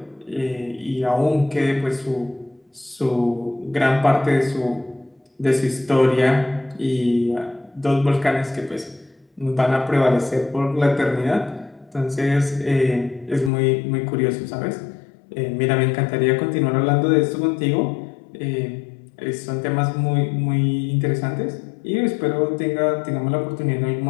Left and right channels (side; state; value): right; drops out; at 13.5 s